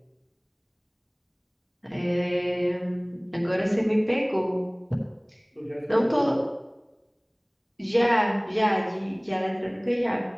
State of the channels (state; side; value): identical; both; correlation 1.00